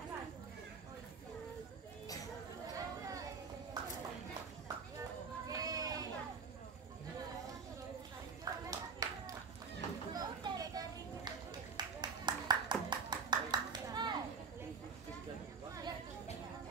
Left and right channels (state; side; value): quieter; left; 5.1 dB